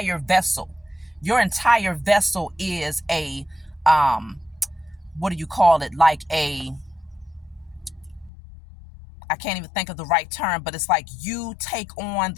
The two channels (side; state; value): right; drops out; at 8.3 s